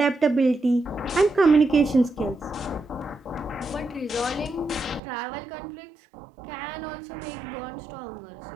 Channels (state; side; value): drops out; left; at 5.0 s